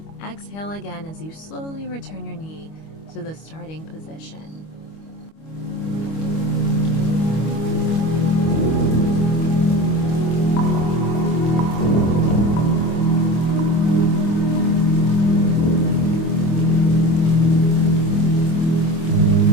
exhale again as you slowly return your knee to the starting position.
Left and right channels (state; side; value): late; right; 25 ms